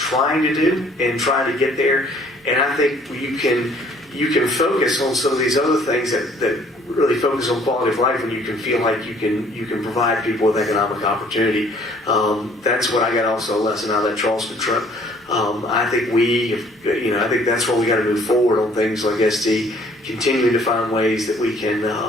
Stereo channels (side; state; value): both; normal; correlation 0.58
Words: to do and trying to get there. And I think you can focus on some of these other things that really focus on quality of life, and you can feel like you can provide people with economic opportunity. That's what I got also a lesson out of that Charleston trip. I think I think that's where we got to move forward on things like SD, continuing to find ways that we can